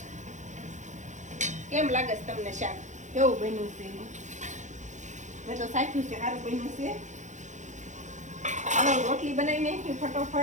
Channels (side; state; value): left; late; 0.35 ms